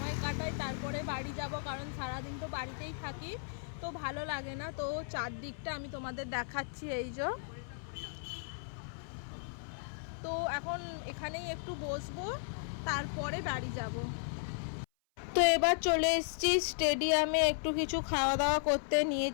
কাটাই, তারপরে বাড়ি যাব, কারণ সারাদিন তো বাড়িতেই থাকি, তো ভালো লাগে না। তো চারদিকটা আমি তোমাদের দেখাচ্ছি, এই যে। তো এখন এখানেই একটু বসবো, তারপরে বাড়ি যাব। তো এবার চলে এসেছি স্টেডিয়ামে, একটু কিছু খাওয়া দাওয়া করতে।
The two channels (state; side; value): silent; right; 54 dB below the other